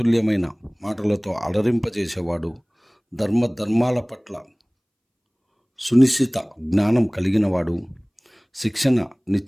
మాటలతో అలరింపజేసేవాడు, ధర్మాల పట్ల సునిశ్చిత జ్ఞానం కలిగినవాడు,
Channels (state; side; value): identical; both; correlation 1.00